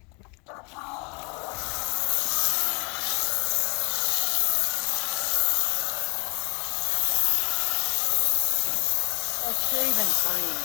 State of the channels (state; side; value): quieter; right; 30.9 dB